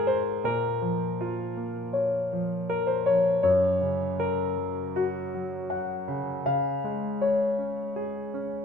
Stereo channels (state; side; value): normal; both; correlation 0.58